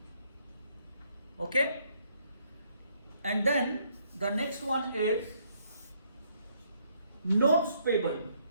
Okay. And then the next one is notes payable.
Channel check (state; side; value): inverted; both; correlation -0.70